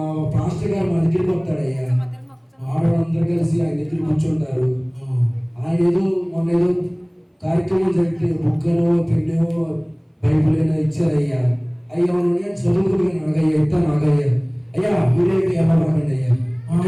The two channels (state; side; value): identical; both; correlation 1.00